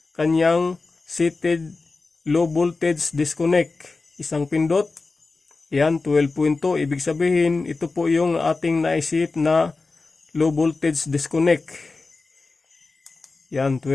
kanyang seated low voltage disconnect. Isang pindot, yan 12.2. Ibig sabihin, ito po yung ating naiset na low voltage disconnect. Yan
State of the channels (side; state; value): right; quieter; 3.8 dB